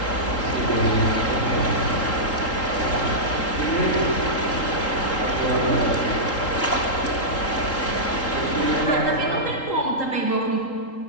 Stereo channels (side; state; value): right; late; 3.8 ms